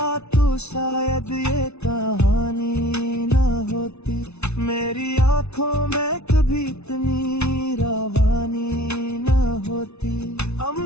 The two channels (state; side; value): late; right; 0.81 ms